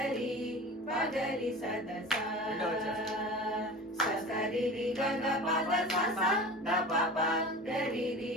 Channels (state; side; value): normal; both; correlation 0.35